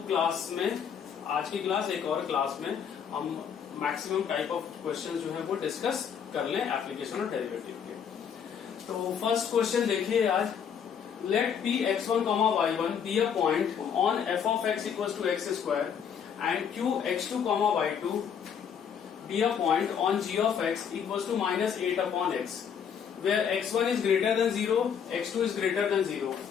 क्लास में, आज की क्लास एक और क्लास में, हम मैक्सिमम टाइप ऑफ क्वेश्चन जो है वो डिस्कस कर लें एप्लीकेशन ऑफ डेरिवेटिव के। तो फर्स्ट क्वेश्चन देखिए आज, late p x1, y1 be a point on f of x equals to x square and q x2, y2 be a point on g of x equals to minus 8 upon x, where x1 is greater than 0, x2 is greater than 0.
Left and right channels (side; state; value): right; quieter; 7.7 dB